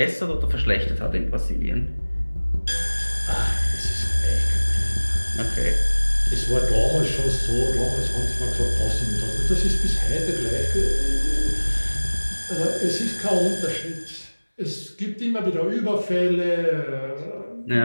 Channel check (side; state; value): both; inverted; correlation -1.00